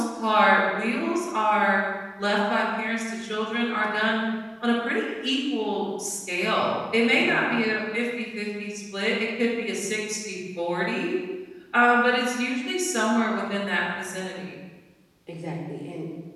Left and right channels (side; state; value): both; identical; correlation 1.00